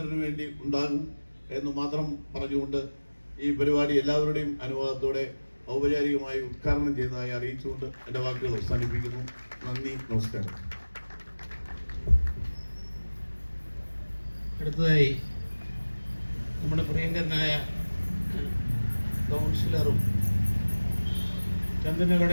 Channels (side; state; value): both; inverted; correlation -1.00